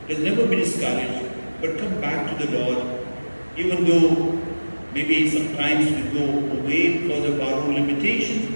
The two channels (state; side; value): inverted; both; correlation -1.00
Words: He has never been discouraged, but come back to the Lord. Even though maybe sometimes we go away because of our own